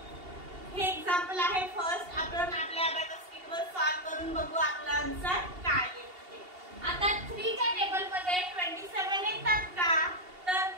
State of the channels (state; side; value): late; left; 2.8 ms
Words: हे एक्झाम्पल आहे फर्स्ट। आपण आपल्या अभ्यास किटवर सॉल्व करून बघू आपला आन्सर काय येते ते। आता 3 च्या टेबल मध्ये 27 येतात का, तर